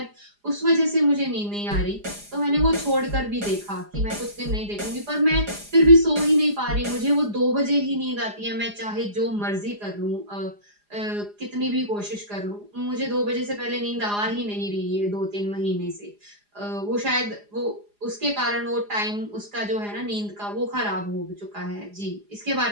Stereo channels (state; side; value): late; left; 4.9 ms